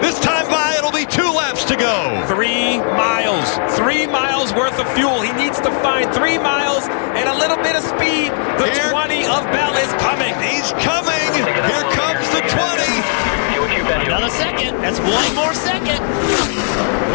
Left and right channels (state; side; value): silent; right; 69 dB below the other